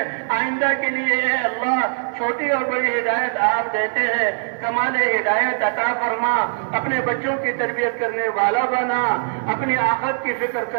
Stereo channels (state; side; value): silent; left; digital silence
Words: آئندہ کے لیے اے اللہ چھوٹی اور بڑی ہدایت آپ دیتے ہیں. کمال ہدایت عطا فرما. اپنے بچوں کی تربیت کرنے والا بنا. اپنی آخرت کی فکر